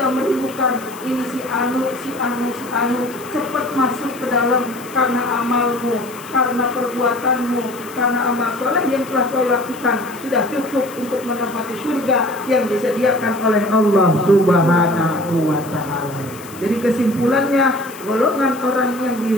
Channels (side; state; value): left; noise; hiss, 18 dB below the sound